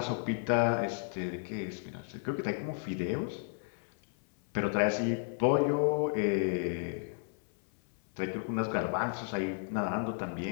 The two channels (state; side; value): silent; right; 56 dB below the other